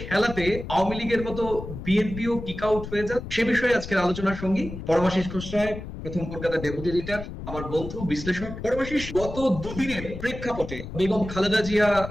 খেলাতে আওয়ামী লীগের মতো বিএনপিও কিক আউট হয়ে যায়, সে বিষয়ে আজকের আলোচনার সঙ্গী পরমাশিস খোসরায়, প্রথম কলকাতা ডেপুটি এডিটর, আমার বন্ধু বিশ্লেষক। পরমাশিস, গত দুদিনের প্রেক্ষাপটে বেগম খালেদা জিয়া,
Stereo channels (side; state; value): left; noise; rumble, 9 dB below the sound